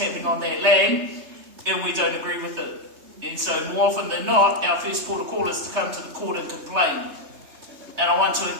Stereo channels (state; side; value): late; left; 3.2 ms